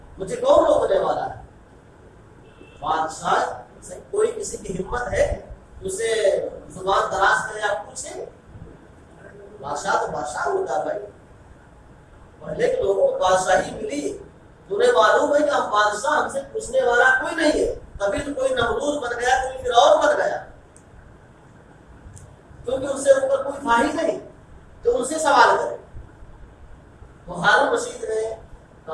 مجھے کون روکنے والا ہے؟ بادشاہ سے کوئی کسی کی ہمت ہے اسے زبان دراز کرے آپ پوچھیں؟ بادشاہ تو بادشاہ ہوتا بھائی، پہلے کے لوگوں کو بادشاہی ملی، تمہیں معلوم ہے کہ ہم بادشاہ، ہم سے پوچھنے والا کوئی نہیں ہے، تبھی تو کوئی نمرود بن گیا، کوئی فرعون بن گیا، کیونکہ ان سے اوپر کوئی تھا ہی نہیں جو ان سے سوال کرے۔ تو ہارون رشید نے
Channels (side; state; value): both; identical; correlation 1.00